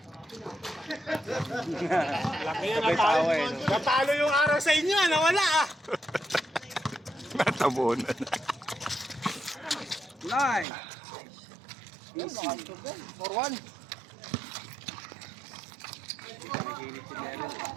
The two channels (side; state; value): left; drops out; at 10.7 s